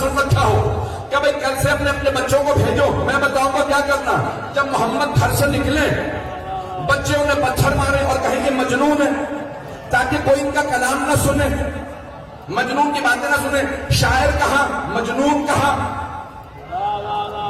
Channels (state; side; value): identical; both; correlation 1.00